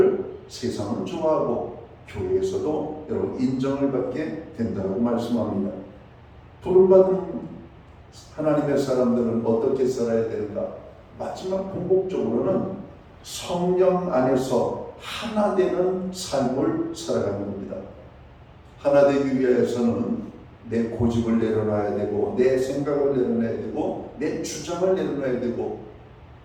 세상은 좋아하고 교회에서도 여러분 인정을 받게 된다고 말씀합니다. 부름받은 하나님의 사람들은 어떻게 살아야 되는가? 마지막 궁극적으로는 성령 안에서 하나 되는 삶을 살아가는 겁니다. 하나 되기 위해서는 내 고집을 내려놔야 되고 내 생각을 내려놔야 되고 내 주장을 내려놔야 되고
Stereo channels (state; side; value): identical; both; correlation 1.00